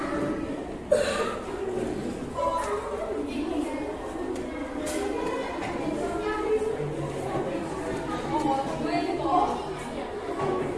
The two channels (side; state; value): both; identical; correlation 1.00